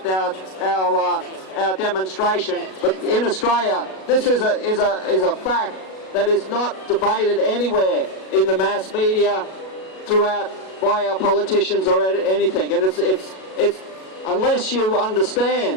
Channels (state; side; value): late; right; 37 ms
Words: our demonstration, but in Australia this is a fact that is not debated anywhere in the mass media throughout by our politicians or anything. And it's unless you